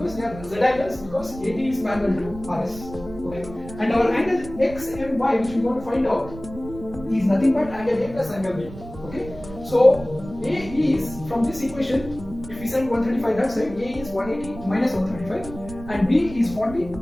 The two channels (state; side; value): noise; right; rumble, 15 dB below the sound